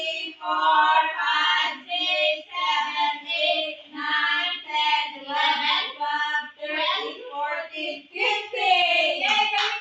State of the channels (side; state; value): both; identical; correlation 1.00